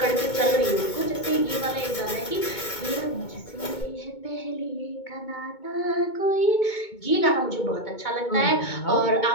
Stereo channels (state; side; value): late; right; 2.2 ms